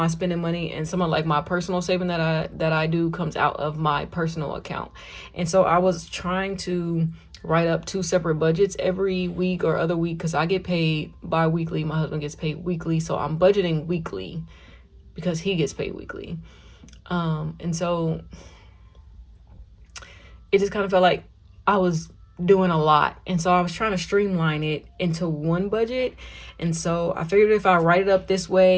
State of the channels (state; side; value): identical; both; correlation 1.00